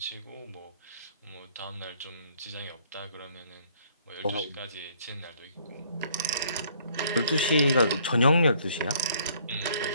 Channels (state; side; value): inverted; both; correlation -0.62